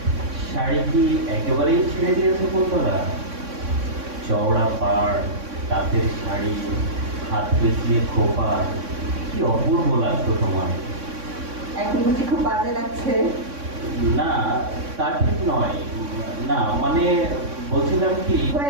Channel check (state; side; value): late; left; 3.6 ms